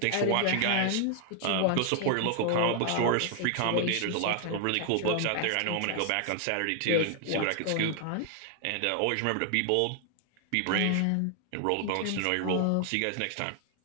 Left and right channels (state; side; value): different; both; correlation 0.00